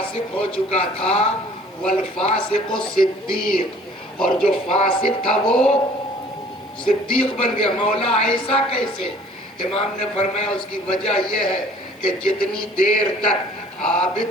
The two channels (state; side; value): normal; both; correlation 0.52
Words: ہو چکا تھا، والفاسق صدیق، اور جو فاسق تھا وہ صدیق بن گیا. مولا ایسا کیسے؟ امام نے فرمایا اس کی وجہ یہ ہے کہ جتنی دیر تک